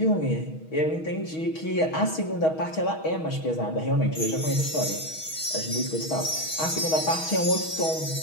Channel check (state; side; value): late; right; 6.3 ms